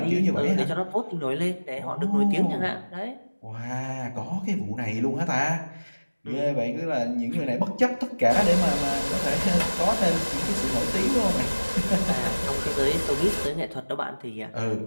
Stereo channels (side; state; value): both; inverted; correlation -1.00